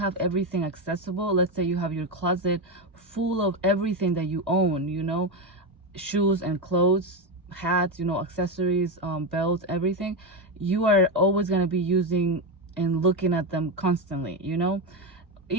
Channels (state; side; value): normal; both; correlation 0.12